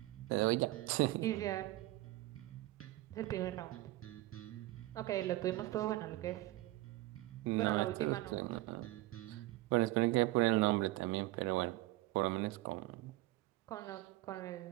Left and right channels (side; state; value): left; quieter; 18.2 dB